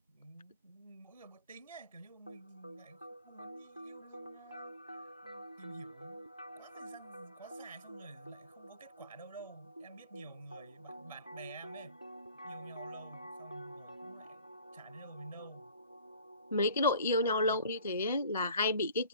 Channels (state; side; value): inverted; both; correlation -0.49